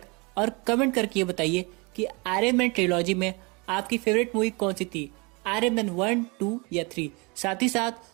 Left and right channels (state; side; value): quieter; left; 28.7 dB